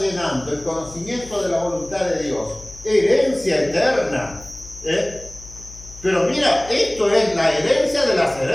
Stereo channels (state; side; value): noise; left; hum, 18 dB below the sound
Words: el conocimiento de la voluntad de Dios. Herencia eterna. Pero mira, esto es la herencia de las